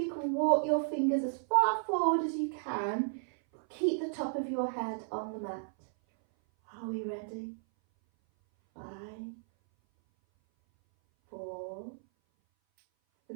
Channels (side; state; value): left; silent; 55 dB below the other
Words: can walk your fingers as far forward as you can, but keep the top of your head on the mat. Are we ready? 5, 4,